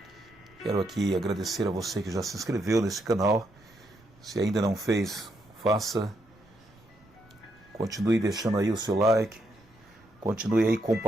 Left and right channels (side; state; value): right; noise; rumble, 29 dB below the sound